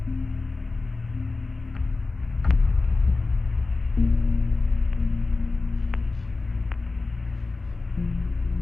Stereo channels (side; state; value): right; quieter; 3.6 dB